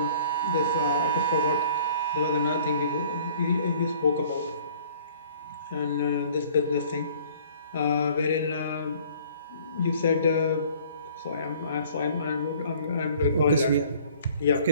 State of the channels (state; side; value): inverted; both; correlation -0.53